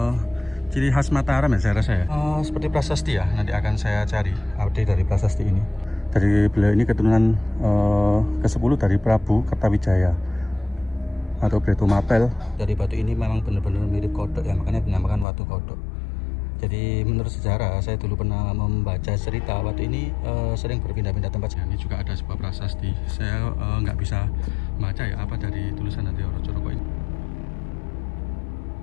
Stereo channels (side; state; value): right; drops out; at 15.2 s